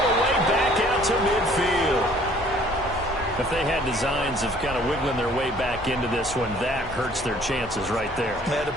the way back out to midfield. If they had designs of kind of wiggling their way back into this one, that hurts their chances right there. They had to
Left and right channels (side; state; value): both; normal; correlation 0.56